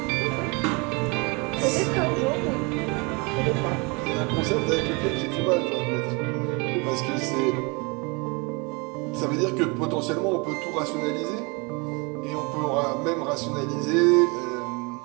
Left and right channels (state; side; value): quieter; left; 29.4 dB